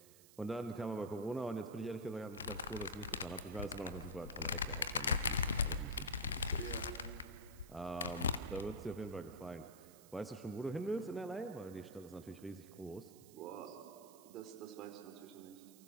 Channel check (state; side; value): noise; right; hiss, 20 dB below the sound